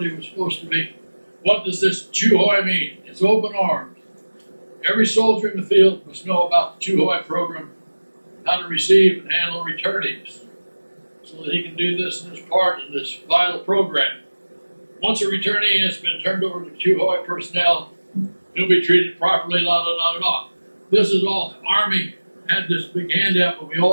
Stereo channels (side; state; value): both; inverted; correlation -1.00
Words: was supposed to be. What does this Chu Hoi mean? It's open arms. Every soldier in the field must know about the Chu Hoi program, how to receive and handle returnees, so that he can do this in his part in this vital program. Once a returnee has been turned over to Chu Hoi personnel, he'll be treated properly, la la la la. This is all. The Army had this big handout, but we